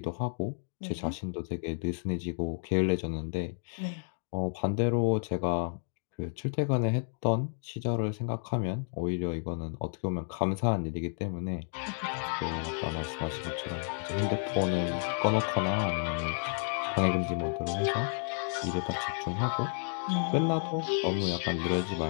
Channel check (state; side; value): silent; right; digital silence